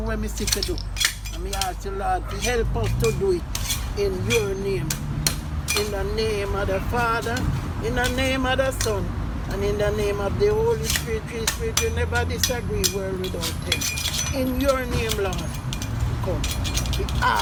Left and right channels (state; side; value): identical; both; correlation 1.00